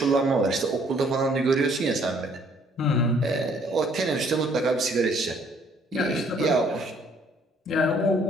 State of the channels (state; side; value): normal; both; correlation 0.62